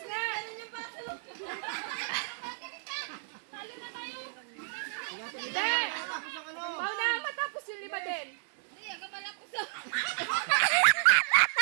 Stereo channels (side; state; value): left; silent; 56 dB below the other